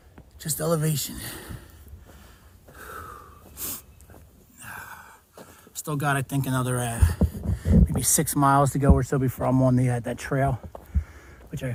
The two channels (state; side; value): identical; both; correlation 1.00